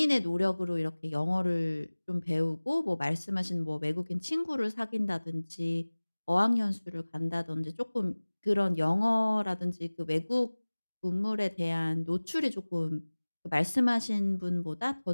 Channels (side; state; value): both; inverted; correlation -1.00